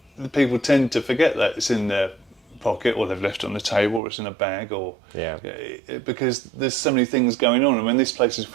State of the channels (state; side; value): drops out; left; at 4.0 s